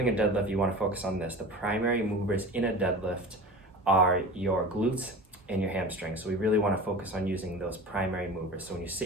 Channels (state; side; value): normal; both; correlation 0.35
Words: a deadlift, you want to focus on this. The primary movers in a deadlift are your glutes and your hamstrings. So we really want to focus on using those primary movers. So when you